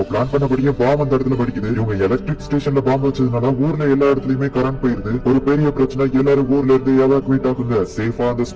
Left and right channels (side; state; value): both; identical; correlation 1.00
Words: பிளான் பண்ணபடியே பாம் அந்த இடத்துல படிக்குது. இவங்க எலக்ட்ரிக் ஸ்டேஷன்ல பாம்பு வச்சதுனால ஊர்ல எல்லா இடத்துலயுமே கரண்ட் போயிருது. ஒரு பெரிய பிரச்சனை. எல்லாரும் ஊர்ல இருந்து எவாக்குவேட் ஆகுங்க, சேஃபா அந்த